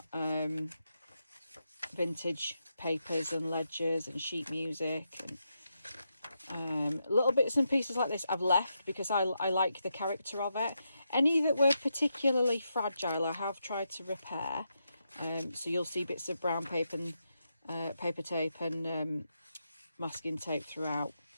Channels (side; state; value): both; inverted; correlation -0.84